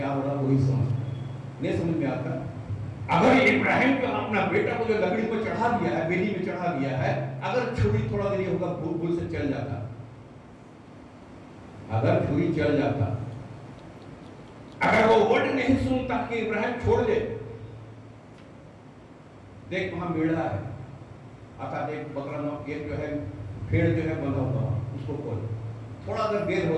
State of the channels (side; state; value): both; identical; correlation 1.00